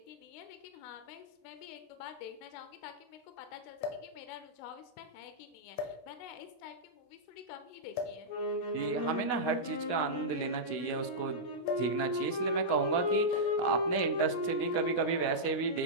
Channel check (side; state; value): right; late; 16 ms